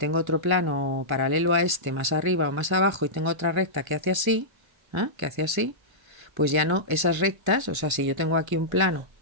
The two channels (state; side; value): late; left; 1.3 ms